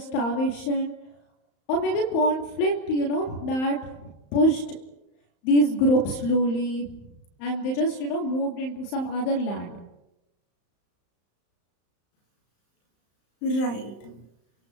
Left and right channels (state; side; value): late; right; 35 ms